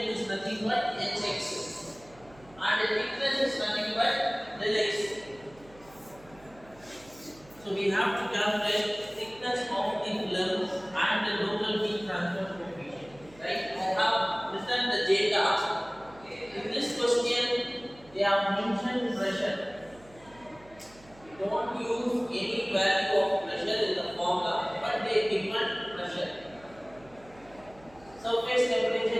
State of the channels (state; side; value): noise; right; hum, 24 dB below the sound